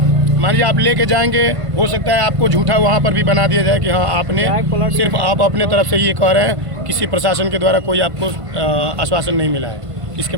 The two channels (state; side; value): late; left; 1.5 ms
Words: मान लीजिए आप लेके जाएंगे, हो सकता है आपको झूठा वहाँ पर भी बना दिया जाए कि हाँ आपने सिर्फ आप अपने तरफ से ये कह रहे हैं, किसी प्रशासन के द्वारा कोई आपको आश्वासन नहीं मिला है। इसके